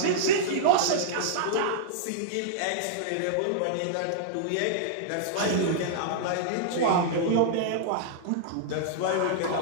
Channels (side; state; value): both; different; correlation -0.02